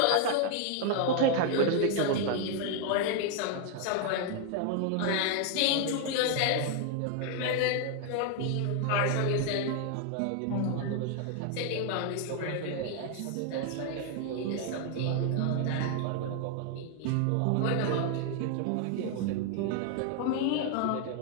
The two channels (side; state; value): both; different; correlation 0.00